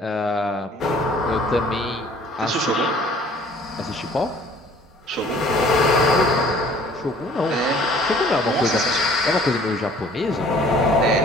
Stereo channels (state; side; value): normal; both; correlation 0.54